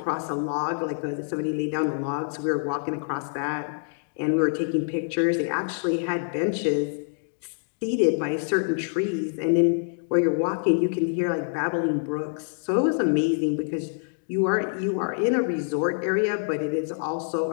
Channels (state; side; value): silent; right; digital silence